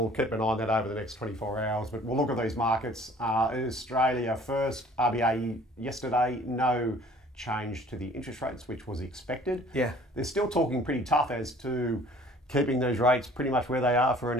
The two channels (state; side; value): normal; both; correlation 0.52